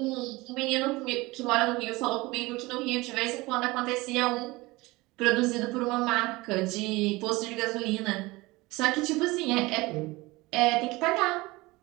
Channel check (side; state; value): left; quieter; 21.7 dB